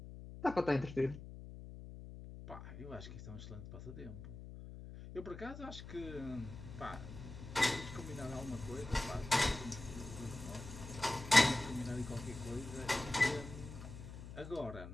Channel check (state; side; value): noise; left; hum, 11 dB below the sound